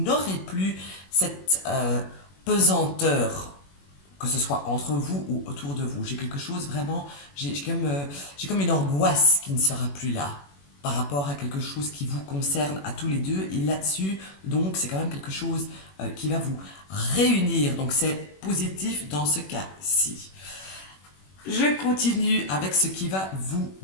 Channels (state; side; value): late; right; 21 ms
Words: plus cette pesanteur, que ce soit entre vous ou autour de vous. J'ai quelque chose vraiment, j'ai comme une angoisse qui ne sera plus là par rapport à quelque chose qui vous concerne à tous les deux. Et là-dessus, donc, c'est quand même quelque chose qui va vous réunir. Donc, c'est positif dans ce cas-ci. Je continue avec ce qui va vous